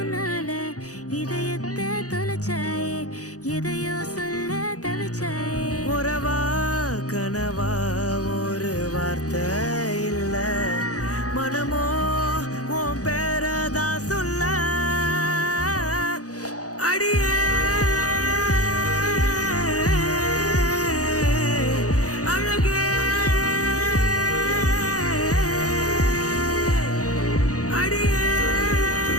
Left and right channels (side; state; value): right; late; 0.67 ms